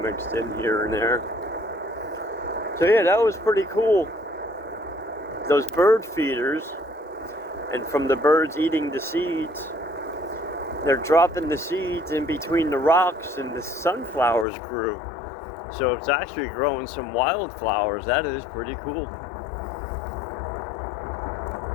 mixed in here and there. So yeah, that was pretty cool. Those bird feeders, and from the birds eating the seeds, they're dropping the seeds in between the rocks and the sunflowers grew. So it's actually growing some wildflowers. That is pretty cool.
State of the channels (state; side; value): drops out; right; at 14.5 s